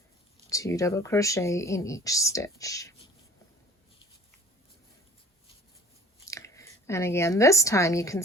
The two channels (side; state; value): both; normal; correlation 0.49